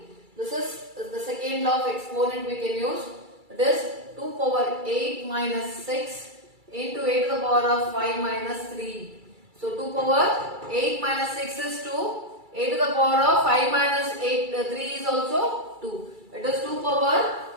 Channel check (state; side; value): late; left; 2.3 ms